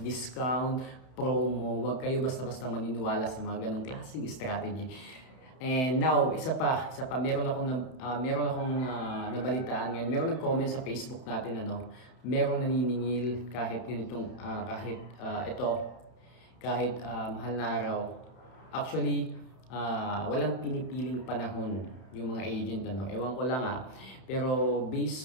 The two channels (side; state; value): right; late; 31 ms